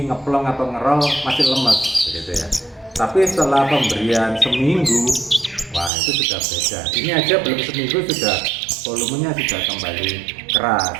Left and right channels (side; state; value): left; drops out; at 5.9 s